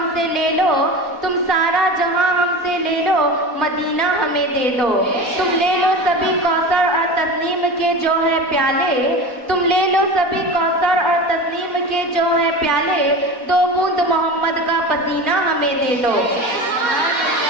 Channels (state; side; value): late; right; 4.1 ms